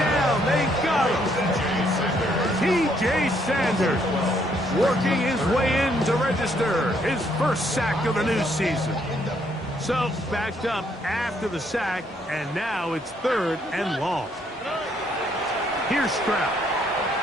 They got him. T.J. Sanders working his way in to register his first sack of the new season. So backed up after the sack, and now it's third and long. Here's Stroud.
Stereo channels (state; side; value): normal; both; correlation 0.70